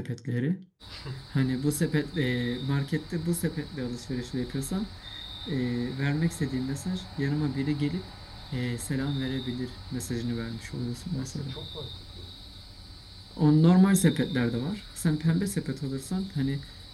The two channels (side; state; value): both; identical; correlation 1.00